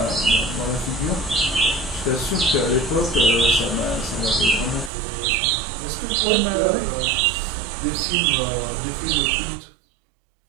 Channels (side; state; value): left; drops out; at 4.9 s